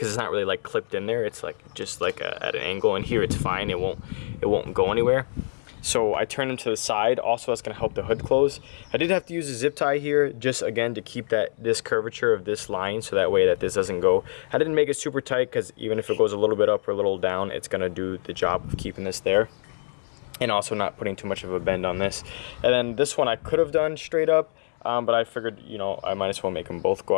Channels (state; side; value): silent; right; 61 dB below the other